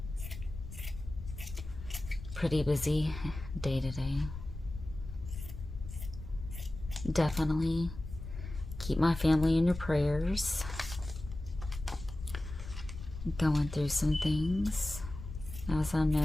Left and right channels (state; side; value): noise; left; rumble, 10 dB below the sound